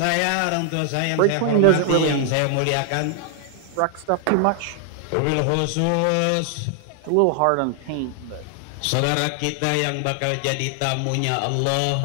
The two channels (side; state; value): both; different; correlation 0.00